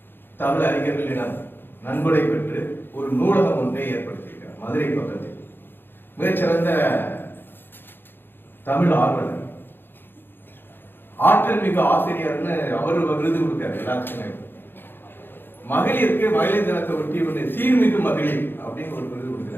தமிழ் அறிஞர்களிடம் நன்கொடை பெற்று ஒரு நூலகம் ஒன்றை ஏற்படுத்தியிருக்கிறார் மதுரை பக்கத்தில். மிகச்சிறந்த தமிழ் ஆர்வலர், ஆற்றல் மிகு ஆசிரியர்னு அவர் விருது கொடுத்தார் எல்லாத்துக்குமே. மகளிருக்கு மகளிர் தினத்தை ஒட்டி ஒரு சீர்மிகு மகளிர் அப்படின்னு ஒரு விருது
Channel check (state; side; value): late; right; 0.10 ms